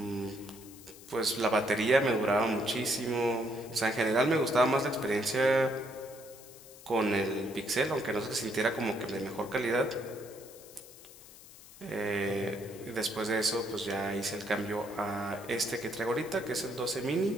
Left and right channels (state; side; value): noise; left; hiss, 19 dB below the sound